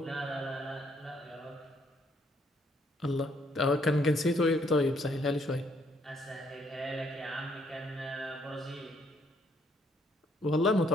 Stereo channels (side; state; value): both; normal; correlation 0.68